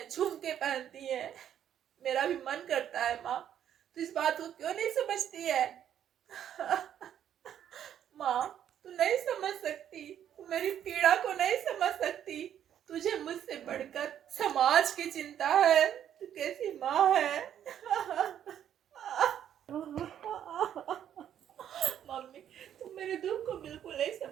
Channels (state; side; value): quieter; left; 10.0 dB